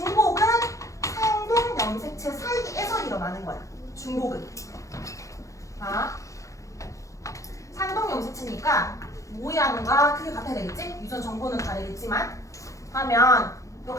상동 염색체 사이에서 일어나는 거야. 중복은. 자, 상동 염색체니까 모양과 크게 같아야 되겠지? 유전 정보는 다르겠지만 하면 요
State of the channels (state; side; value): late; right; 0.15 ms